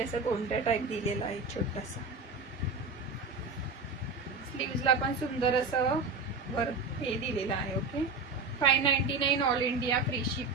गोंडा टाईप दिलेला आहे छोटासा. स्लीव्हजला पण सुंदर असं वर्क हे दिलेलं आहे. Okay, 599 all India free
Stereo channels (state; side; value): quieter; left; 3.9 dB